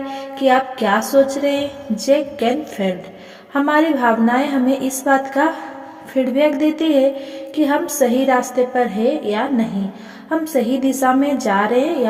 कि आप क्या सोच रहे हैं? जे कैनफील्ड। हमारी भावनाएं हमें इस बात का फीडबैक देती है कि हम सही रास्ते पर हैं या नहीं, हम सही दिशा में जा रहे हैं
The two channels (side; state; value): both; identical; correlation 1.00